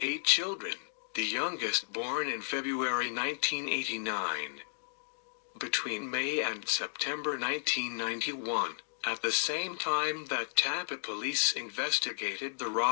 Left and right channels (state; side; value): silent; right; digital silence